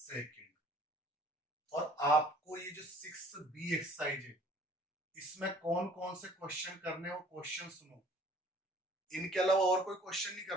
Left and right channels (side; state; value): both; normal; correlation 0.53